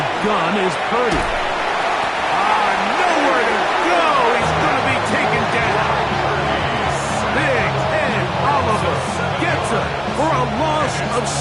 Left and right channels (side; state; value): both; identical; correlation 1.00